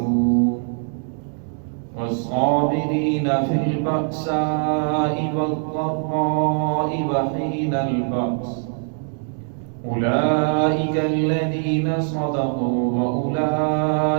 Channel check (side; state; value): left; silent; 57 dB below the other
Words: والصابرين في البأساء والضراء وحين البأس أولئك الذين صدقوا